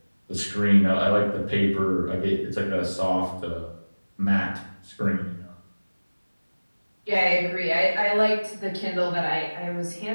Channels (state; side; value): inverted; both; correlation -1.00